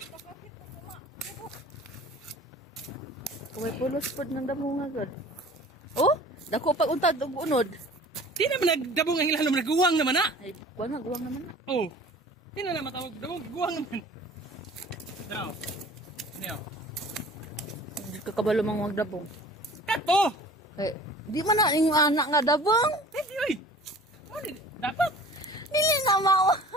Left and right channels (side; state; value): both; normal; correlation 0.45